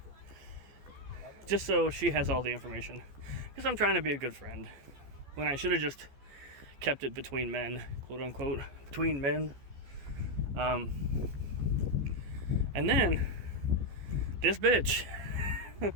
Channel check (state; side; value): late; left; 14 ms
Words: Just so she has all the information. Because I'm trying to be a good friend. When I should have just kept it between men, quote unquote, between men. And then, this bitch